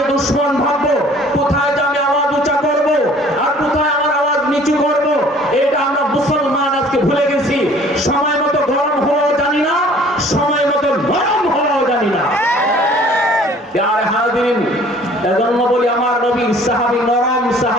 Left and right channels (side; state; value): both; normal; correlation 0.53